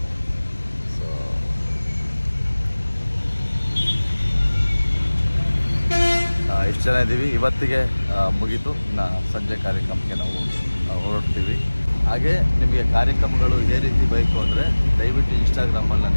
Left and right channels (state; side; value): inverted; both; correlation -1.00